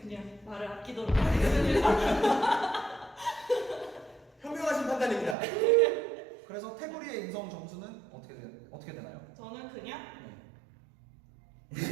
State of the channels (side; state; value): left; drops out; at 5.4 s